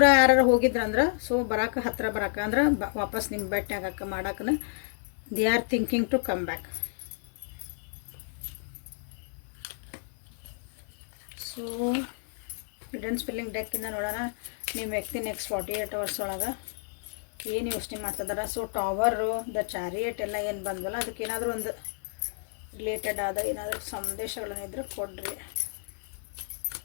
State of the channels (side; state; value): right; silent; digital silence